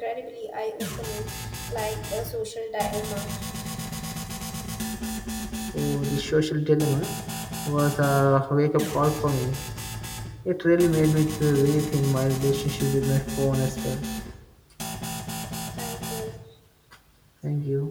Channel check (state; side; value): identical; both; correlation 1.00